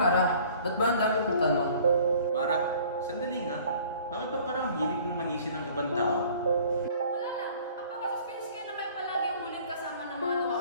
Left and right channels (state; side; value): inverted; both; correlation -0.51